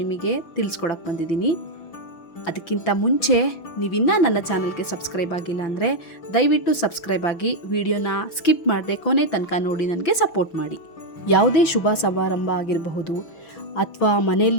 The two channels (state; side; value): late; right; 6.0 ms